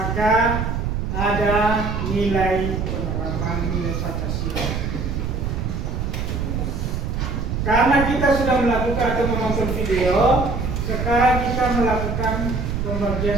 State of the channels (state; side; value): noise; right; rumble, 2 dB below the sound